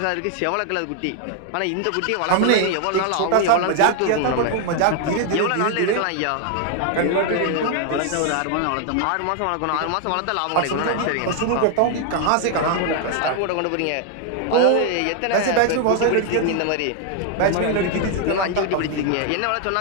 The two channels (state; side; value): different; both; correlation 0.00